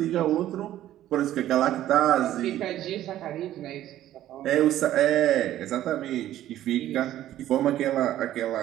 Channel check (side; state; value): left; quieter; 13.0 dB